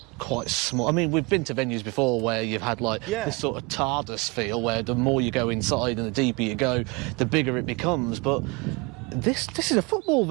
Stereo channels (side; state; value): left; quieter; 27.4 dB